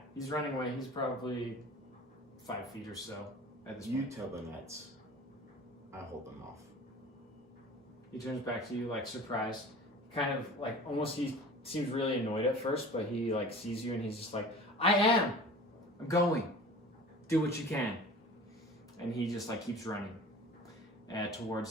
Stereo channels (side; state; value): both; normal; correlation 0.41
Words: he's running away. He's probably 5 feet or so at this You point. tell the knights. I hold them off. He turns back to you surprised, kind of almost. He seems really annoyed at first, but he sees you and he's just I'm going. Do what you can. And he just keeps running